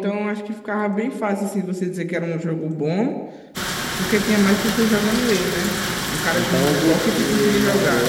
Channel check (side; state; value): both; identical; correlation 1.00